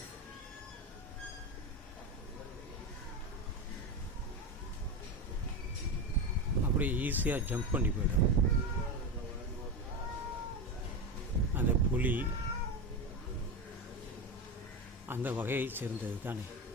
அப்படியே ஈஸியாக ஜம்ப் பண்ணி போயிடும். அந்த புலி அந்த வகையை சேர்ந்தது தானே.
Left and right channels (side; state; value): both; normal; correlation 0.18